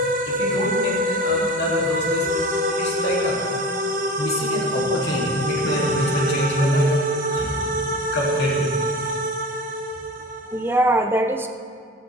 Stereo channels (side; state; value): both; normal; correlation 0.34